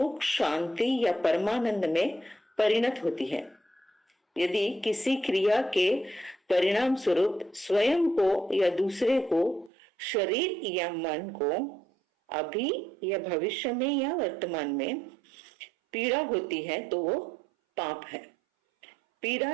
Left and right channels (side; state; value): left; drops out; at 9.7 s